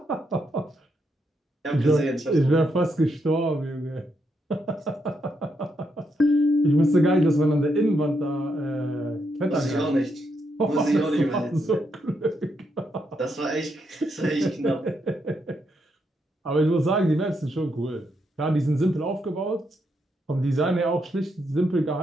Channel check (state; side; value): normal; both; correlation 0.79